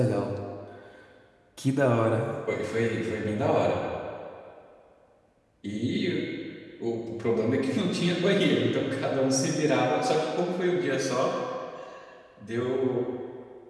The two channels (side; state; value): both; identical; correlation 1.00